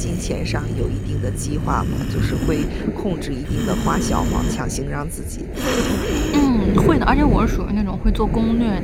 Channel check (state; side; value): identical; both; correlation 1.00